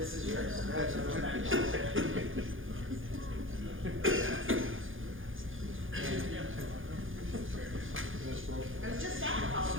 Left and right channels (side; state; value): left; late; 0.58 ms